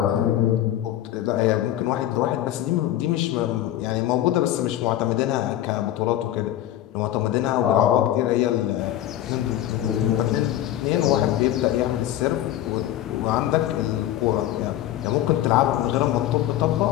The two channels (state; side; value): quieter; right; 12.9 dB